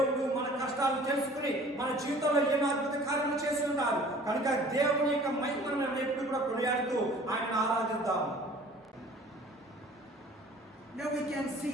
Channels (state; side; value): normal; both; correlation 0.49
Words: మన కష్టాలు తెలుసుకుని మన జీవితంలో ఎన్నో అద్భుత కార్యాలు చేసి ఉన్నారు. కనుక దేవుని యొక్క మహిమను మనం ఎప్పుడు కూడా కొనియాడుతూ ఆయన ఆరాధిద్దాం. Now we can